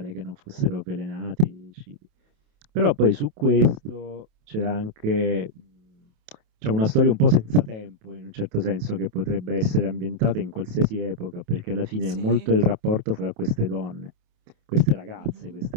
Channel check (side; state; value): left; late; 27 ms